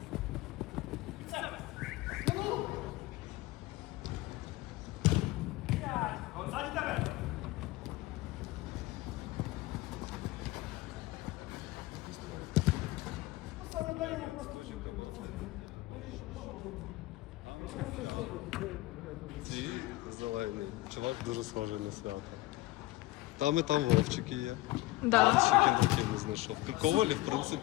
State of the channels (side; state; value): right; quieter; 18.7 dB